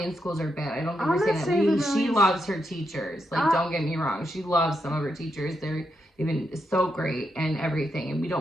schools are bad. I don't think we're saying that. She loves her teachers. Don't get me wrong. She loves some of her teachers. They've been so great and everything, and we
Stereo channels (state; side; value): normal; both; correlation 0.83